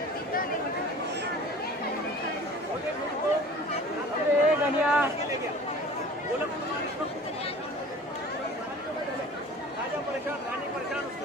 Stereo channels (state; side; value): normal; both; correlation 0.44